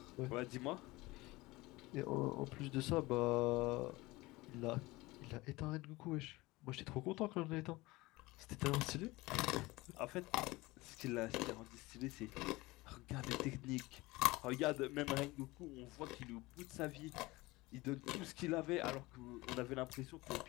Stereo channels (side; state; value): right; quieter; 21.1 dB